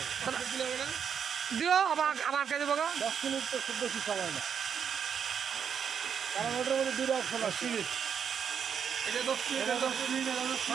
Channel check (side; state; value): left; quieter; 7.6 dB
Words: দিও আমার কাছে বলো 10 মিনিট তো খুব বেশি সময় না, কারণ ওটার মধ্যে দুটো অপশন আছে। এটা 10 মিনিট